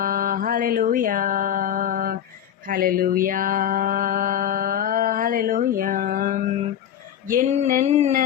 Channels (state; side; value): quieter; right; 10.0 dB